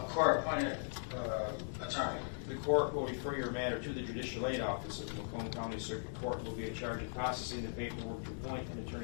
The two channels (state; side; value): silent; right; digital silence